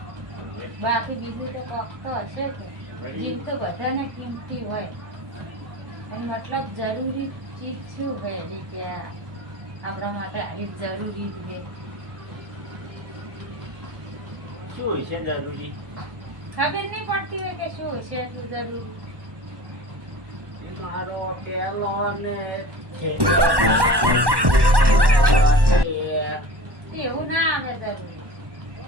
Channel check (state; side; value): late; left; 1.1 ms